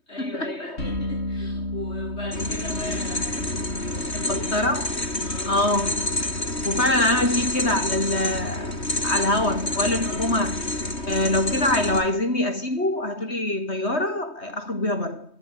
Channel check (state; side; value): late; right; 3.2 ms